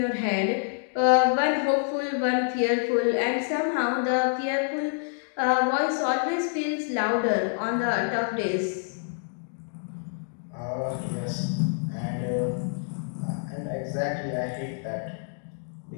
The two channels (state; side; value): silent; right; digital silence